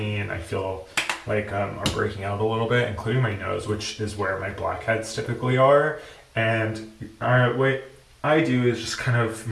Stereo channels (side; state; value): both; identical; correlation 1.00